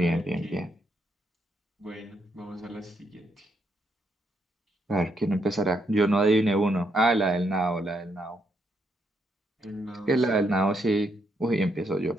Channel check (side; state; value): both; normal; correlation 0.76